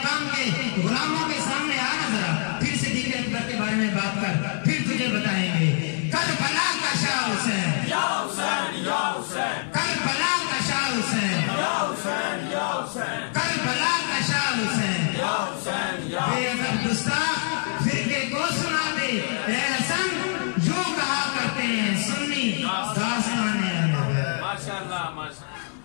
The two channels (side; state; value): right; silent; digital silence